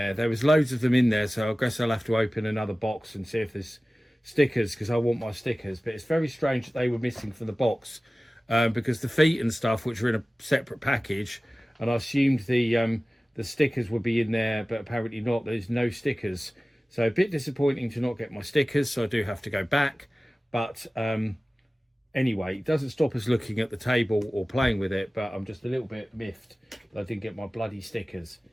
There was loads of them in there, so I guess I'll have to open another box and see if there's stickers because I want my stickers. But it's very strange that they were missing from the box, because the feet and stuff, which were in a separate package, and I assumed the stickers would be in there, but apparently not. There's no stickers, so a bit disappointing to not get my stickers. So I do have to go back, but anyway, it doesn't stop us looking at the table or playing with it, but I'm just a little bit miffed that I didn't get my bloody stickers.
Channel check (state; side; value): normal; both; correlation 0.97